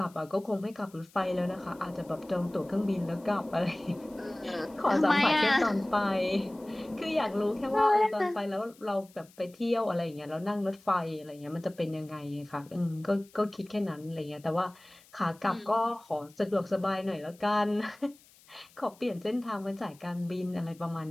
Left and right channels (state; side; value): noise; left; hiss, 27 dB below the sound